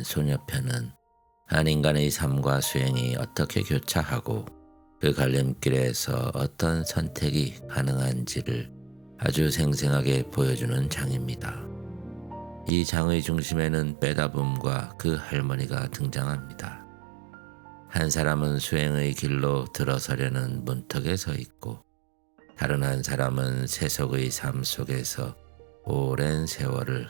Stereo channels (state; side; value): drops out; left; at 12.7 s